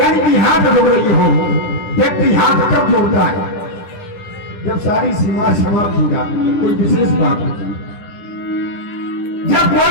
कि हाथ जोड़ रही हो। व्यक्ति हाथ कब जोड़ता है? जब सारी सीमा समाप्त हो जाती है, कोई विशेष बात होती है। जब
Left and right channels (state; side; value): late; right; 10 ms